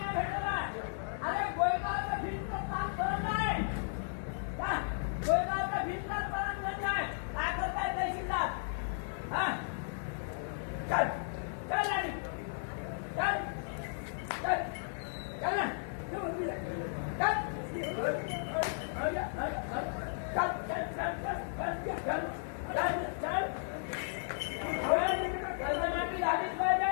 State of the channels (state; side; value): silent; right; digital silence